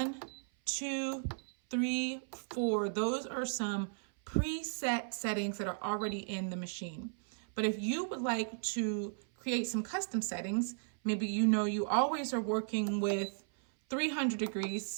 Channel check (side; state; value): left; silent; 54 dB below the other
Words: 2, 3, 4. Those are some preset settings that are already in the machine. But if you would like to create some custom settings, maybe you know you always are working with 300 degrees.